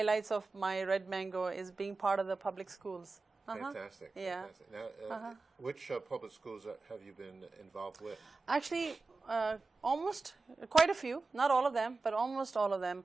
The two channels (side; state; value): left; quieter; 3.8 dB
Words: of my Red Mango is being part of the public schools. Fantastic. Yeah. Fantastic. Now, which public schools have you been involved with? Actually, almost quite a few. Not all of them, but almost all of them.